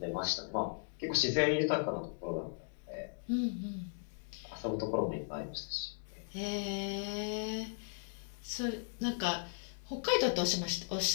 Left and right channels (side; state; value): right; silent; 53 dB below the other